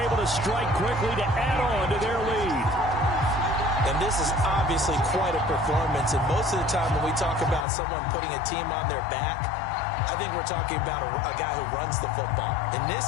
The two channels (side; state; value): right; drops out; at 7.7 s